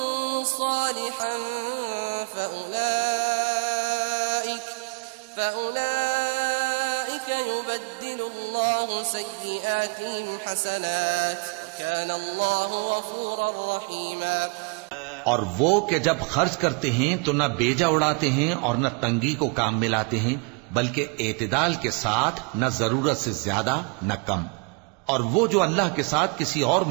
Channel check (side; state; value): left; quieter; 33.5 dB